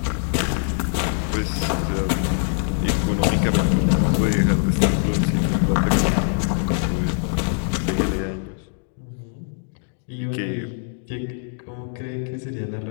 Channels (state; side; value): silent; right; digital silence